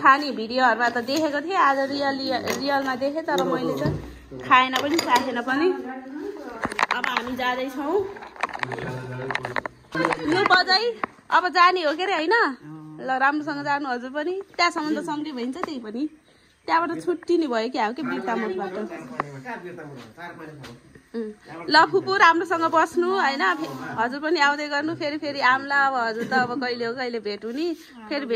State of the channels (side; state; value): both; identical; correlation 1.00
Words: भिडियोहरूमा त देखेको थिएँ, आज रियलमा देखेँ, तर मैले त खाएन पनि चाखेन पनि। अब हामी जाँदैछौँ। लु बजै अब जाने हो के अरे होइन? ल राम्रोसँग जानु हजुर पनि। त्यहाँसम्म त सँगै भइन्छ, त्यही पनि त्यहाँबाट छुट्टिने भयो कि के बिर्ता मोडबाट। ल फुपू राम्रोसँग बस्नु होइन, हजुर पनि आउँदै गर्नु। फेरि आम्ला। अब हजुर त अब कहिले हो कहिले भेट हुने, फेरि